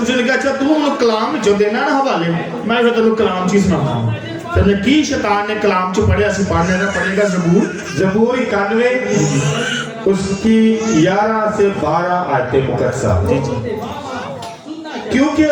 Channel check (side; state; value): both; identical; correlation 1.00